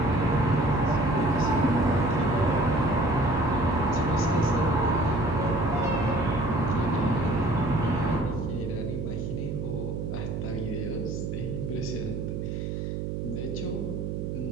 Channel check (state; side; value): noise; right; hum, 3 dB below the sound